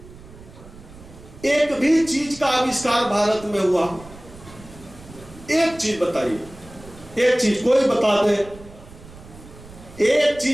एक भी चीज का आविष्कार भारत में हुआ? एक चीज बताइए, एक चीज कोई बता दे, एक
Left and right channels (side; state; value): right; noise; rumble, 19 dB below the sound